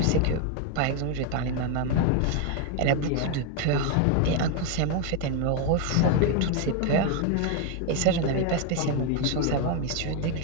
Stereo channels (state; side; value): different; both; correlation 0.01